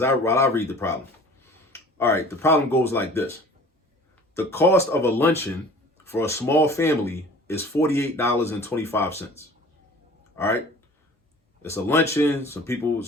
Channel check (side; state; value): both; normal; correlation 0.46